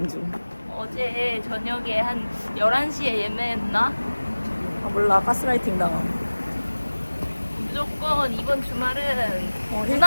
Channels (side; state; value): both; inverted; correlation -1.00